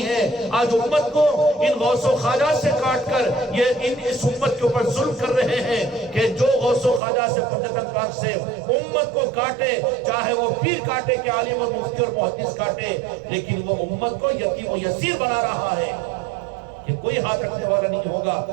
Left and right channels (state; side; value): drops out; left; at 7.0 s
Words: ہے۔ آج امت کو ان غوث و خواجہ سے کاٹ کر یہ اس امت کے اوپر ظلم کر رہے ہیں کہ جو غوث و خواجہ سے پنجتن پاک سے امت کو کاٹے، چاہے وہ پیر کاٹے کہ عالم اور مفتی اور محدث کاٹے، لیکن وہ امت کو یتیم و یسیر بنا رہا ہے کہ کوئی ہاتھ رکھنے والا نہیں